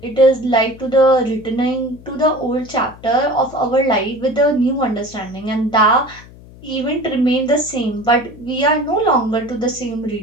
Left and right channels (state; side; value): noise; left; hum, 21 dB below the sound